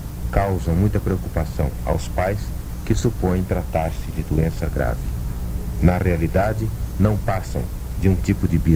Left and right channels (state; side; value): identical; both; correlation 1.00